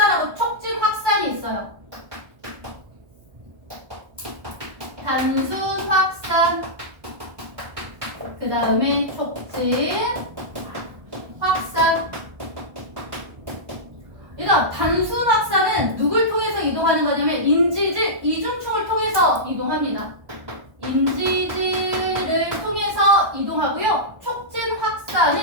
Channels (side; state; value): left; late; 1.2 ms